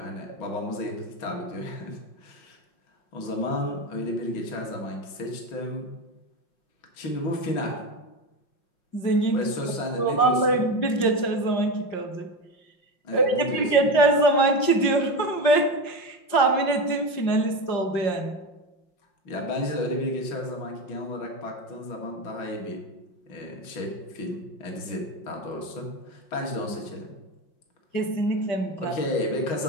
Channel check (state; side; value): late; right; 5.6 ms